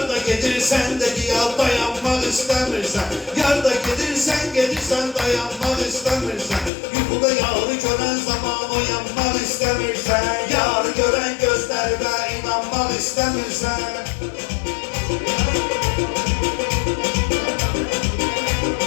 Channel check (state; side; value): drops out; right; at 6.7 s